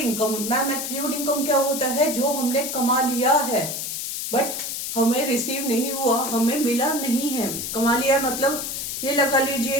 Ma'am accrued income क्या होता है? जो हमने कमा लिया है बट हमें रिसीव नहीं हुआ, हमें मिला नहीं है। कमा लिया मतलब ये लगा लीजिए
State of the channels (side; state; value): left; noise; hiss, 4 dB below the sound